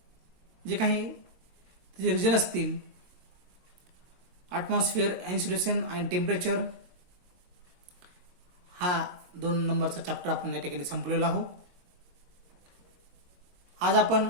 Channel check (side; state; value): left; late; 22 ms